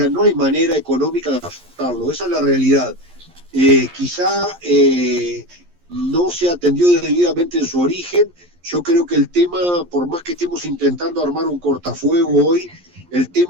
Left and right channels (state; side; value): late; left; 11 ms